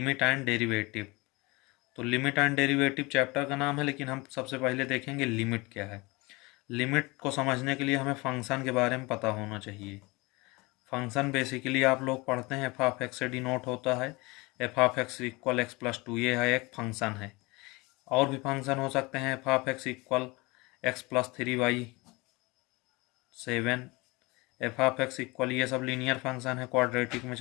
एंड डेरिवेटिव। तो लिमिट एंड डेरिवेटिव चैप्टर का नाम है, लेकिन हम सबसे पहले देखेंगे लिमिट क्या है। लिमिट को समझने के लिए हमें फंक्शन के बारे में पता होना चाहिए। फंक्शन बेसिकली आप लोग पढ़ते हैं एफ ऑफ एक्स से डिनोट होता है। F of X equal X plus two, ये है एक फंक्शन है। और भी फंक्शन हो सकते हैं, F of X equal X plus three Y seven, F of X equal, ये सब लीनियर फंक्शन है। क्वाड्रेटिक में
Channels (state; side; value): quieter; right; 24.6 dB